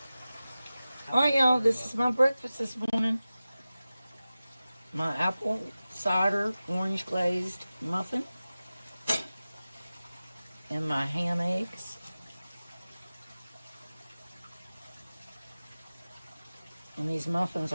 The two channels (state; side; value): inverted; both; correlation -0.96